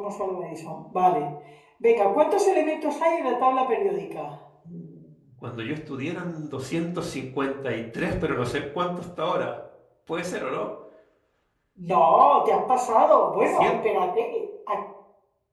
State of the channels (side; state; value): both; identical; correlation 1.00